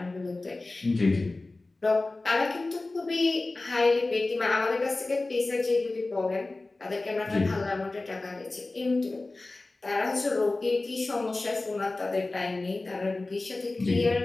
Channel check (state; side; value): quieter; right; 3.2 dB